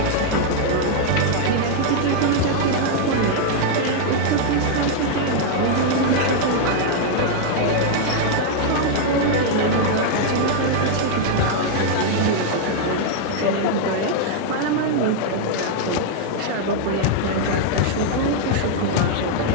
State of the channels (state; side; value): different; both; correlation 0.00